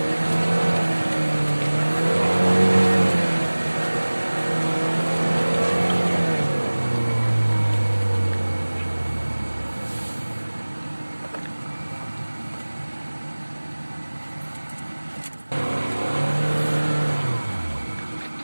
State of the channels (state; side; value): inverted; both; correlation -1.00